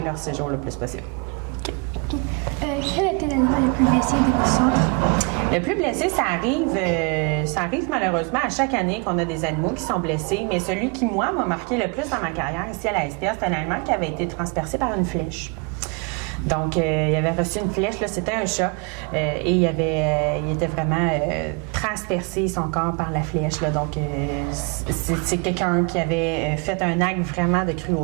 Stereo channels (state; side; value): quieter; left; 32.4 dB